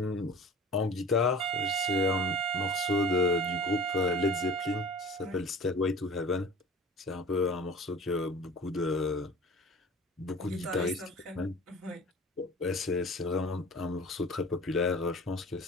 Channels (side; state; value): both; normal; correlation 0.41